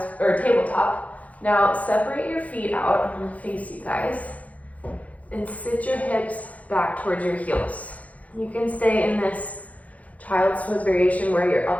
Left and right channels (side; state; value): right; late; 0.069 ms